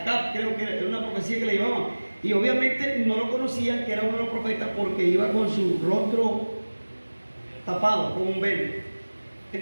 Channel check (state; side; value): inverted; both; correlation -1.00